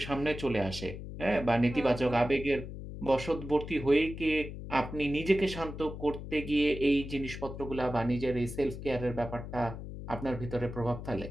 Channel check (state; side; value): noise; left; hum, 9 dB below the sound